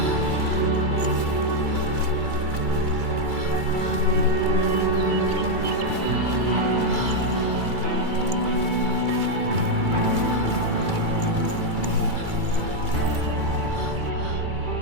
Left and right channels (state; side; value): late; left; 2.3 ms